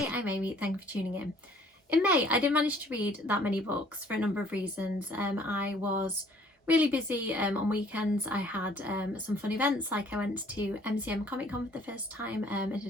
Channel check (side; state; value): both; normal; correlation 0.58